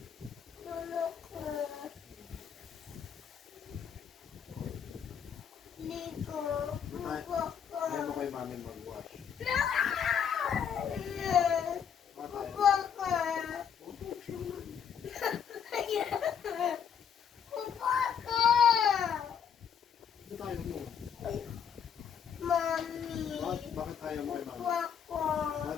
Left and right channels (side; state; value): right; quieter; 7.8 dB